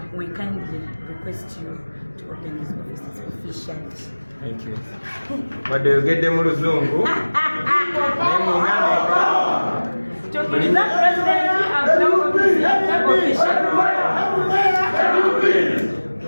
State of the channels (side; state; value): both; inverted; correlation -1.00